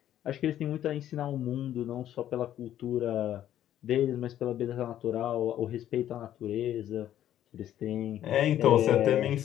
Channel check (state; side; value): quieter; right; 11.7 dB